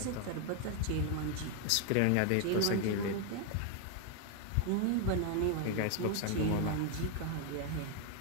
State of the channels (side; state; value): both; different; correlation 0.01